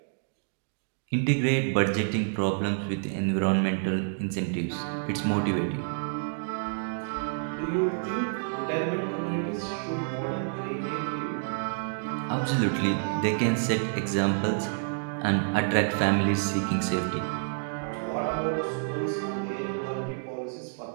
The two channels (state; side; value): silent; left; digital silence